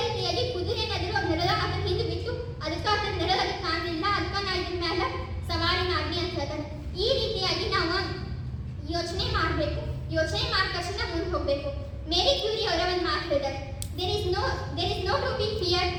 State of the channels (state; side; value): identical; both; correlation 1.00